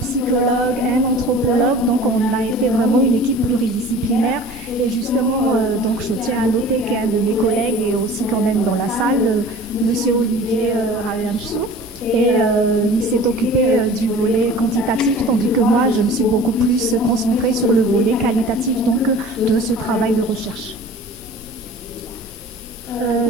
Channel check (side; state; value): both; normal; correlation 0.42